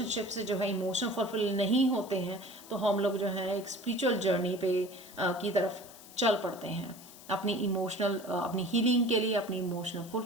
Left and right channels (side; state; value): left; noise; hiss, 19 dB below the sound